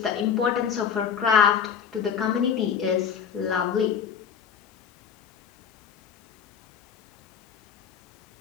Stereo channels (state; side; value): quieter; right; 7.5 dB